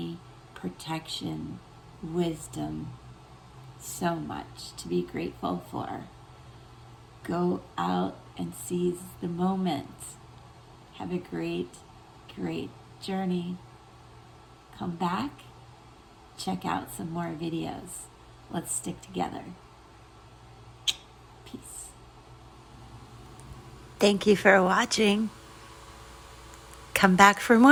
protection, wisdom. So much to be grateful for. Go out and seize the moment. Have a great, great journey. Come back, check out some more videos. Let's stick together. Peace. Thank you for watching. Come back for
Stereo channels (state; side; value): identical; both; correlation 1.00